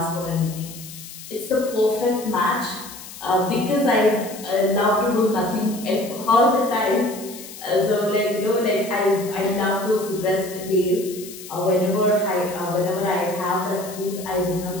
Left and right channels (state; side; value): noise; left; hiss, 14 dB below the sound